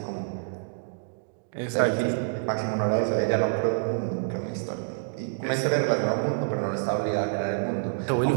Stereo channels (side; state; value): left; silent; digital silence